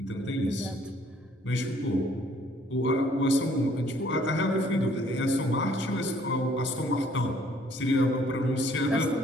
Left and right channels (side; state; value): both; normal; correlation 0.61